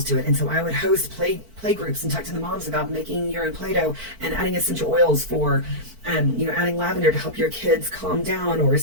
to it. And so I would host play groups and talk to the moms about making your own Play-Doh and adding essential oils for adding lavender to help your kids calm down, or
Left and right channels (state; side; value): late; left; 4.5 ms